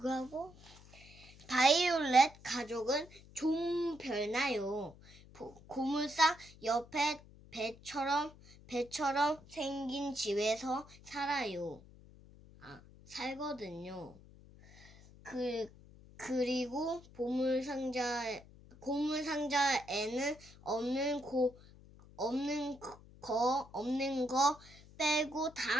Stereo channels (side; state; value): left; noise; hum, 22 dB below the sound